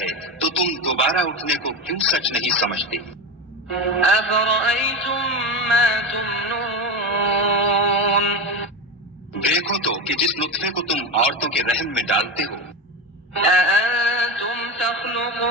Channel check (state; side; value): normal; both; correlation 0.19